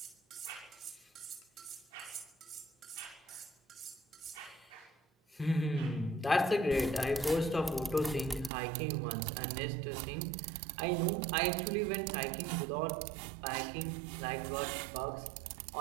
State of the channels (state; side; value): drops out; left; at 8.5 s